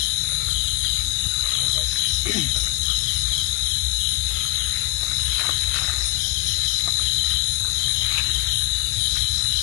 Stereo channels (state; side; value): quieter; right; 20.0 dB